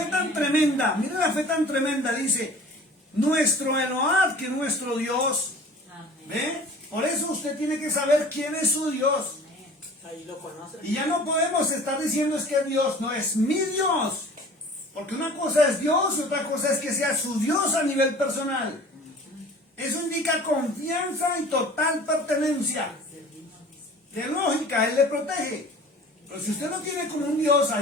tan tremenda, dice, nuestro Elohá, que nuestro Dios. ¿Ve? Por eso usted tiene que saber quién es su Dios. Ahí lo conoce. Y ya no podemos estar diciendo es que Dios no es mi Dios. Porque una cosa es Dios y otra cosa es que sea su Dios a nivel personal. Eso indica confianza y total pertenencia. De lógica, Él le protege. Pero si usted no tiene como un Dios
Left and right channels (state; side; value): normal; both; correlation 0.45